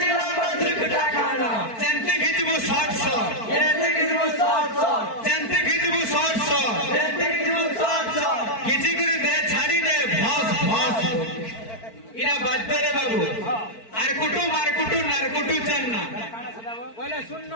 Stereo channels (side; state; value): right; late; 4.5 ms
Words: ধুরকুটা খানা চেন্তি খিচবু শর্ট শর্ট চেন্তি খিচবু শর্ট শর্ট খিচি করে দে ছাড়ি দে ভস ভস ইরা বাধ্য রে বাবু আর কুটু মার কুটু নার কুটু চান্না বলে শুনন